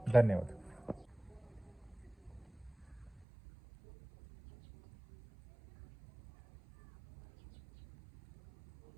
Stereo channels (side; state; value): left; drops out; at 3.2 s